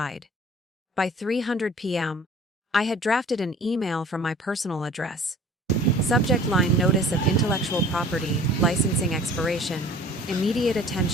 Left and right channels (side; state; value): both; normal; correlation 0.48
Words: By 3:00 p.m., I had drafted an email from my personal address. Subject line: notice of intellectual property, licensing expiration, immediate